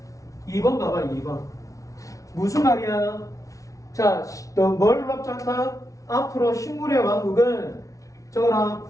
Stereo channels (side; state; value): right; late; 0.16 ms